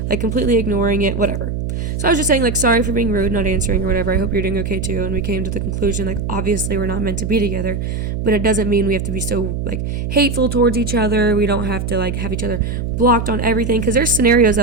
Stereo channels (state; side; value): noise; right; hum, 3 dB below the sound